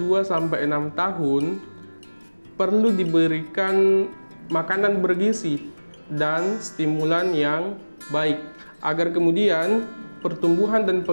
tahun perlu diberikan makanan bergizi dan stimulan yang baik agar kemudian pertumbuhan dan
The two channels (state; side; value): inverted; both; correlation -1.00